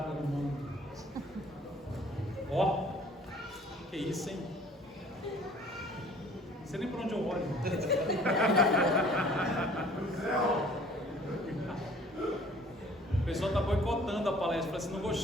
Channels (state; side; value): normal; both; correlation 0.52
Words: no mundo. Ó. Que isso, hein? Não sei nem por onde eu olho. O pessoal está boicotando a palestra. Fala assim, não